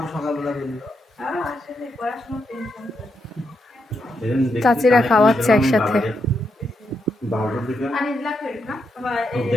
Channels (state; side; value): normal; both; correlation 0.82